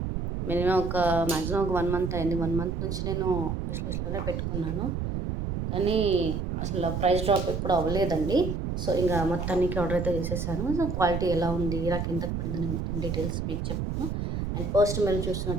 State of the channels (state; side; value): noise; right; rumble, 3 dB below the sound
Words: మినిమం మ్యాక్సిమం ఒక 1 మంత్ అయింది. 1 మంత్ నుంచి నేను విష్ లిస్ట్‌లోనే పెట్టుకున్నాను. కానీ అసలు ప్రైస్ డ్రాప్ ఎప్పుడు అవ్వలేదండి. సో ఇంక మొత్తానికి ఆర్డర్ అయితే చేసేసాను. సో క్వాలిటీ ఎలా ఉంది, నాకెంతకు పడిందని మొత్తం డీటెయిల్స్ మీకు చెప్తాను. అండ్ ఫస్ట్ మీరు